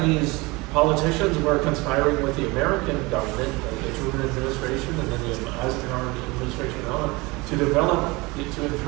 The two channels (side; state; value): left; quieter; 24.0 dB